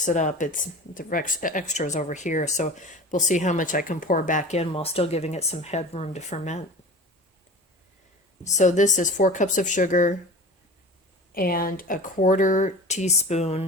it up. It's the extras over here, so we'll see how much I can pour back in while still giving it some headroom to ferment. So this is 4 cups of sugar and a 1/4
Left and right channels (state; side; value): normal; both; correlation 0.37